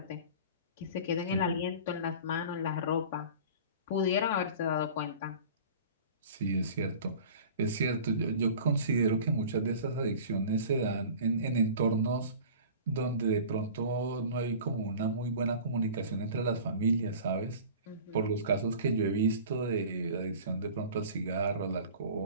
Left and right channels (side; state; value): both; inverted; correlation -0.40